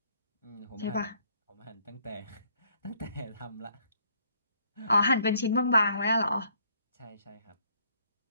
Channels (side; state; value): both; inverted; correlation -0.67